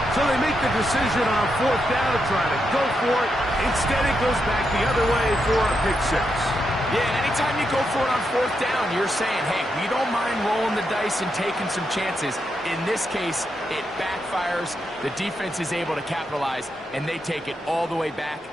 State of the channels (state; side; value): normal; both; correlation 0.83